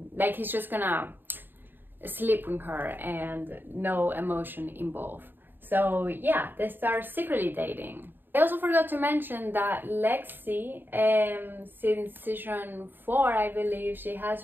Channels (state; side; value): late; left; 0.094 ms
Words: he's just gonna sleep with her and no emotion involved. So yeah, they start secretly dating. I also forgot to mention that Lexi, since season 4, I believe, she has